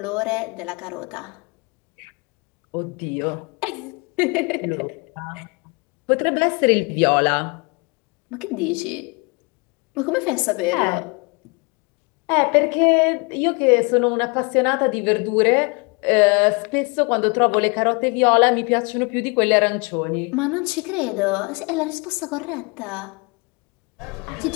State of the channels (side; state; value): right; quieter; 30.9 dB